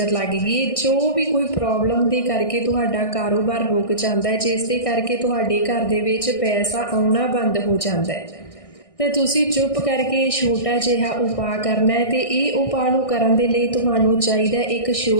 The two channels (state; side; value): late; right; 1.6 ms